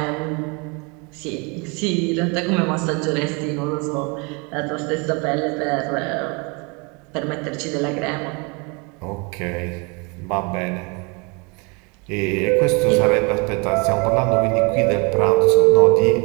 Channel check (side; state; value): left; quieter; 30.7 dB